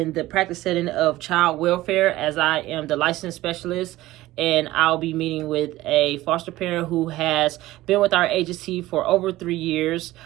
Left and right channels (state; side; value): quieter; left; 16.9 dB